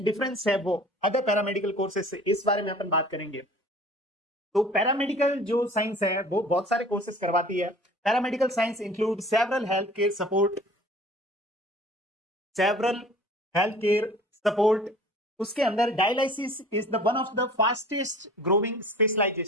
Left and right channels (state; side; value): normal; both; correlation 0.46